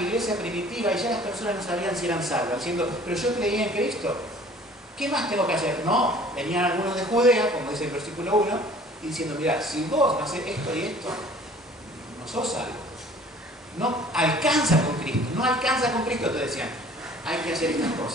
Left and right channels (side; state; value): both; normal; correlation 0.51